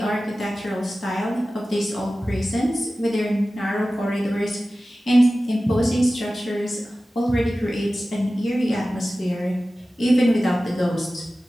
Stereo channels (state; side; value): normal; both; correlation 0.96